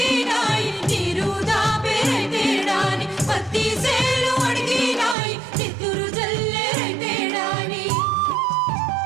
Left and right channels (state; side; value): drops out; left; at 5.2 s